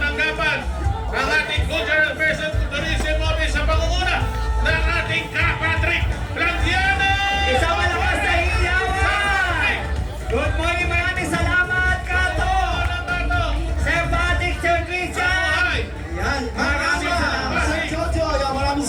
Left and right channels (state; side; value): identical; both; correlation 1.00